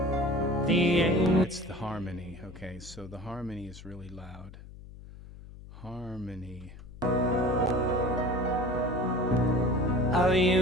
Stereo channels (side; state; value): left; noise; hum, 16 dB below the sound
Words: the Angel. It's the harmony. Okay, so the harmony is really loud. Harmony. Our